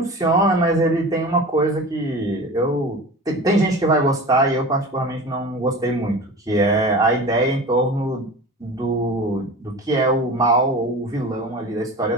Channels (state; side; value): normal; both; correlation 0.34